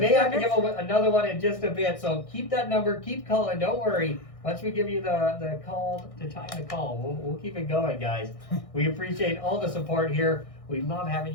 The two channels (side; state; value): right; late; 1.6 ms